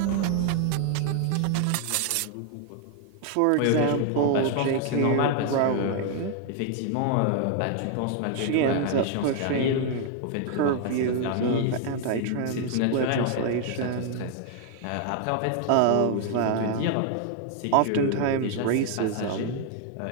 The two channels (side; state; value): both; different; correlation 0.00